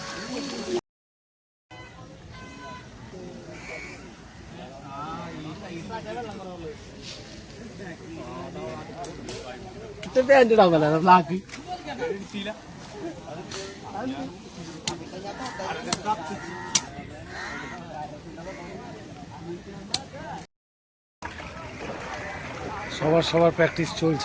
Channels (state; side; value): identical; both; correlation 1.00